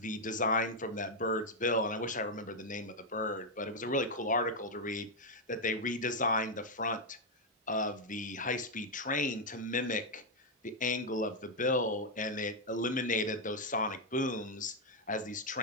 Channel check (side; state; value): both; normal; correlation 0.01